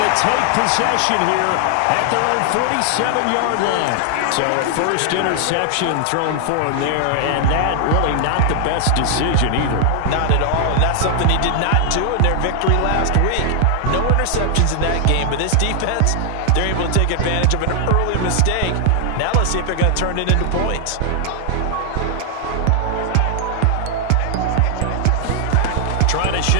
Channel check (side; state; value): both; different; correlation 0.00